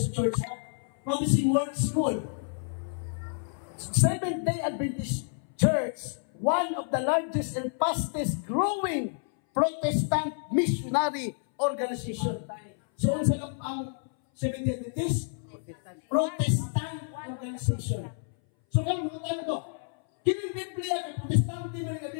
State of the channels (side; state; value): right; silent; 59 dB below the other